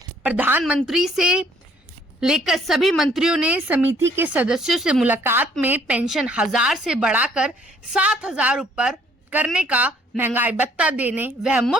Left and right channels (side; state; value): both; normal; correlation 0.61